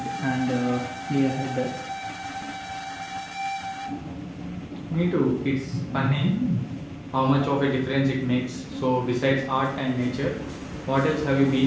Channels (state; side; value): identical; both; correlation 1.00